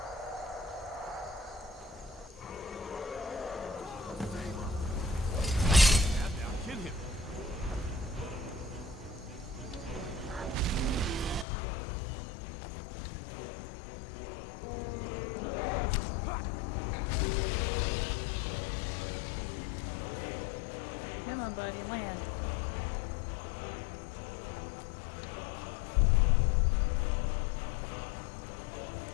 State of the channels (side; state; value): right; drops out; at 11.5 s